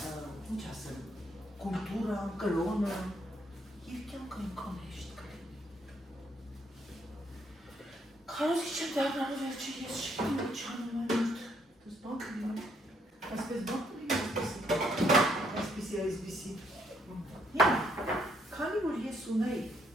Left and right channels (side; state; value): both; normal; correlation 0.71